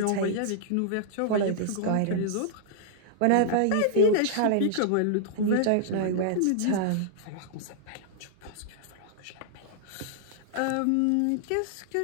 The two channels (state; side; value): different; both; correlation -0.01